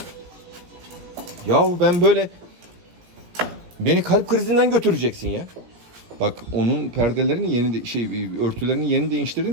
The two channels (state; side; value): late; left; 17 ms